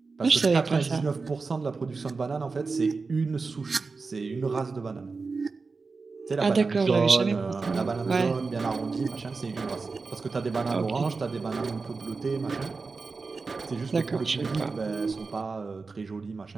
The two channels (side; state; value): left; quieter; 4.3 dB